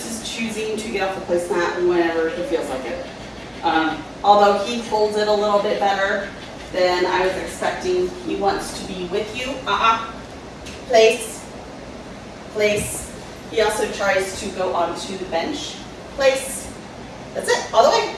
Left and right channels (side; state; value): both; identical; correlation 1.00